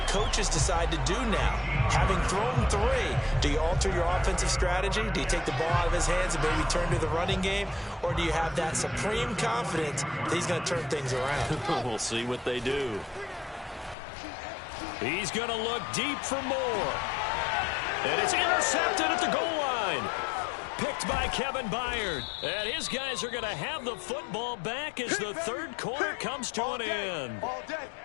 coaches decide to do now? Having thrown 3, do you alter your offensive strategy? Do you take the ball out of his hands and maybe turn to the running game? Or do you have that supreme confidence that he's going to turn things around? We'll see what they do. He's going to look deep for more. And it's intercepted at the goal line. Picked by Kevin Byard. And his guys are going to have the football back as the third quarter comes to an end.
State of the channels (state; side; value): drops out; right; at 14.0 s